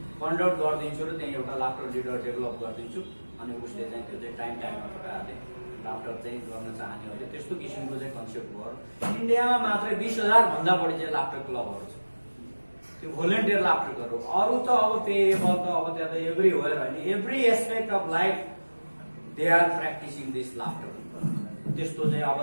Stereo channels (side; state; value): both; inverted; correlation -1.00